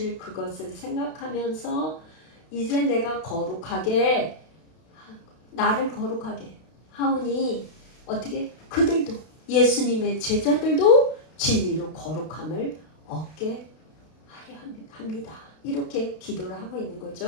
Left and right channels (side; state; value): right; late; 32 ms